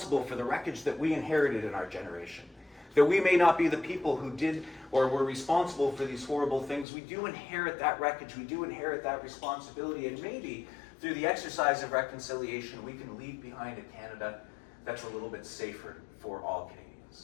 for the wreckage that we inherited in our generation, that we may not be the people who did or were responsible for these horrible things, we do inherit that wreckage, we do inherit that responsibility, and maybe through the exercise of reconciliation, we can leave behind a Canada that's a little bit safer for all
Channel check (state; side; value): drops out; right; at 6.9 s